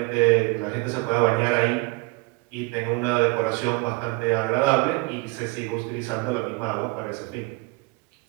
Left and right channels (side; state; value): left; quieter; 26.0 dB